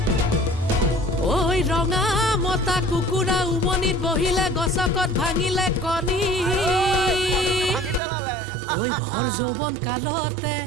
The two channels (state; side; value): drops out; left; at 8.0 s